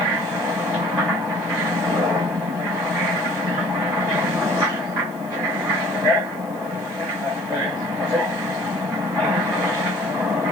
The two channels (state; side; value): noise; left; hiss, 25 dB below the sound